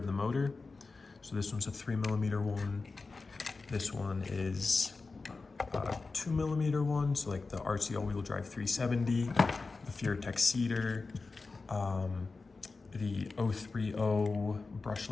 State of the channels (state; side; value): quieter; right; 4.0 dB